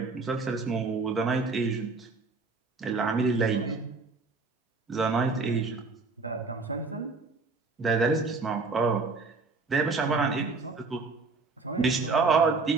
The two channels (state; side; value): quieter; left; 4.1 dB